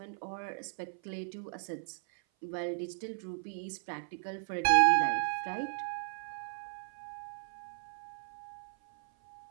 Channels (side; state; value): left; silent; 54 dB below the other